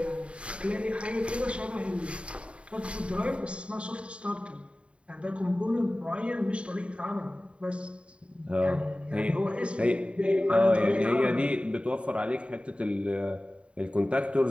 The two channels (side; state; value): left; late; 0.060 ms